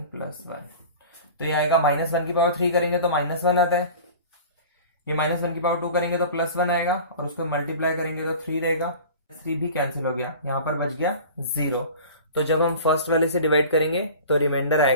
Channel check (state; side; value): inverted; both; correlation -0.39